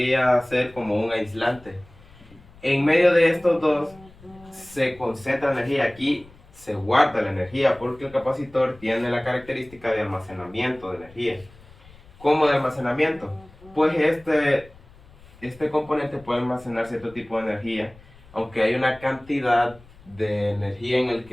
ser como un aislante. En medio de estos dos se concentra energía. Aquí se guarda la energía porque el capacitor tiene la característica de almacenamiento de energía. ¿Cómo de almacenamiento? Pues este componente puede almacenar cierto tipo de energía, aunque hay una cantidad de energía en el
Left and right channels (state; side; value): noise; left; rumble, 24 dB below the sound